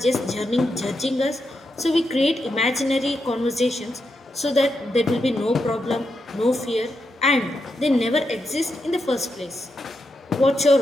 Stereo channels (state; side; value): normal; both; correlation 0.85